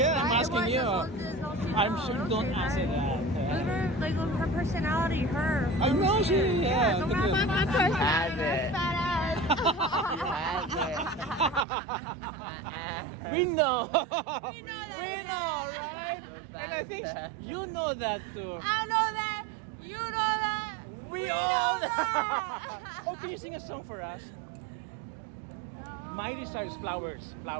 I'm asking you. I'm sure don't answer that. Like her personality, her. I know she. Yeah. Don't ask my personality. Has it. Fat ass. We know. We know that. We know, right? And I think you know that too. I know that. You know that. We know all that. Oh, can you sing a song for us? No. My desire is flowers.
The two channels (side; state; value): left; drops out; at 11.7 s